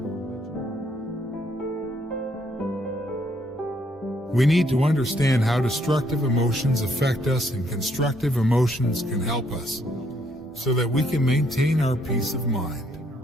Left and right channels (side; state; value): both; normal; correlation 0.70